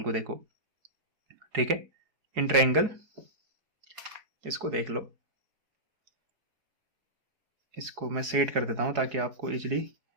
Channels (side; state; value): left; late; 4.8 ms